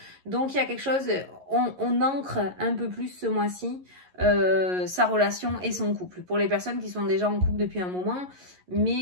Donc il y a quelque chose, on ancre un peu plus ce mois-ci sa relation et son couple. Pour les personnes qui sont déjà en couple depuis un moment,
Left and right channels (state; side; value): late; left; 11 ms